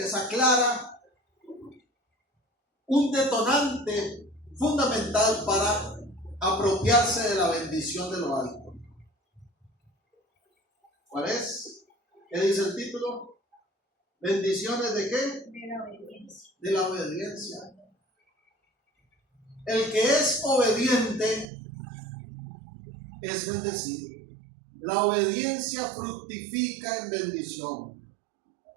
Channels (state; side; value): drops out; left; at 21.5 s